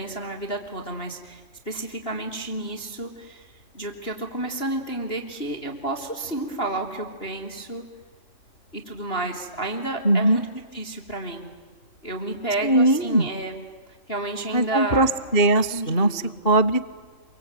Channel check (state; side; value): late; right; 2.9 ms